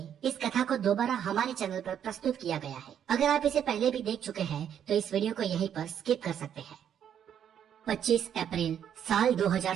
इस कथा को दोबारा हमारे चैनल पर प्रस्तुत किया गया है। अगर आप इसे पहले भी देख चुके हैं तो इस वीडियो को यहीं पर स्किप कर सकते हैं। 25 अप्रैल साल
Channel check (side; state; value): left; quieter; 9.2 dB